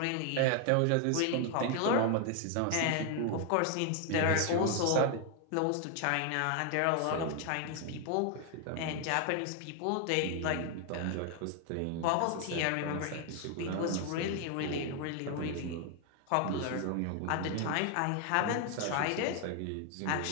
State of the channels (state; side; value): different; both; correlation 0.01